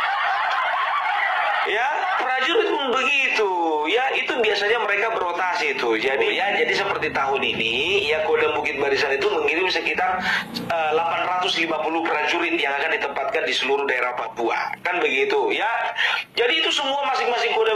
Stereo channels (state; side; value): identical; both; correlation 1.00